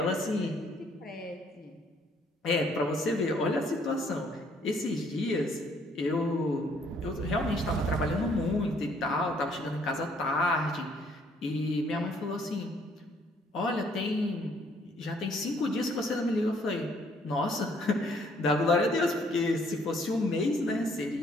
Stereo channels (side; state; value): both; normal; correlation 0.64